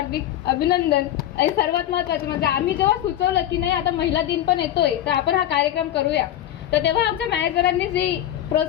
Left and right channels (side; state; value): right; quieter; 12.2 dB